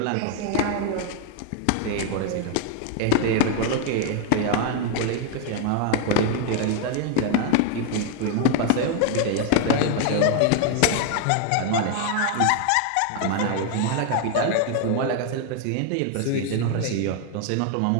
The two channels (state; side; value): different; both; correlation 0.01